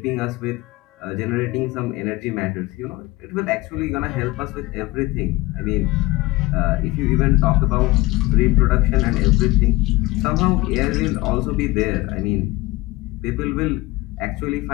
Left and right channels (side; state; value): right; quieter; 20.6 dB